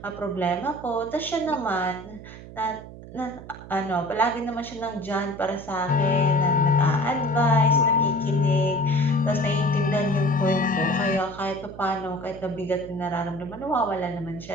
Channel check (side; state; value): right; noise; hum, 15 dB below the sound